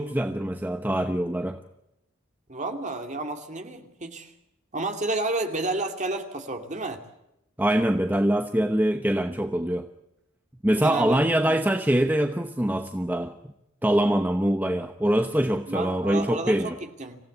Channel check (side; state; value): both; normal; correlation 0.83